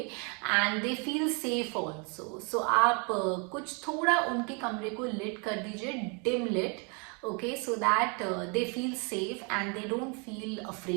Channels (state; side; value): quieter; left; 34.5 dB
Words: they feel safe also. So आप कुछ थोड़ा उनके कमरे को लिट कर दीजिए, dim lit, okay, so that they feel safe and they don't feel